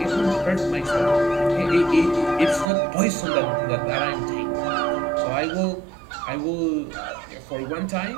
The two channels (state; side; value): drops out; left; at 2.7 s